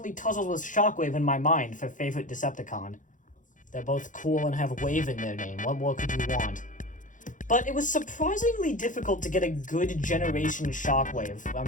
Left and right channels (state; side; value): late; right; 0.37 ms